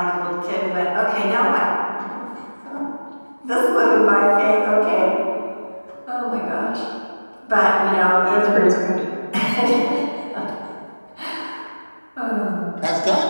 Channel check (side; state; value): both; inverted; correlation -1.00